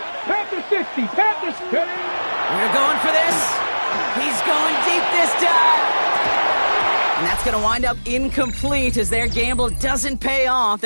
Panther 60, Panther 50. We're going for this. He's going deep this time. And that's going to wind up incomplete as their gamble doesn't pay off.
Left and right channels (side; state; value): both; inverted; correlation -1.00